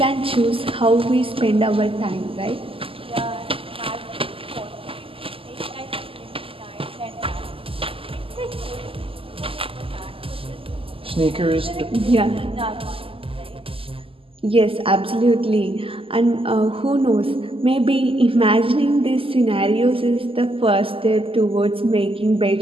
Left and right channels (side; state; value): left; late; 0.26 ms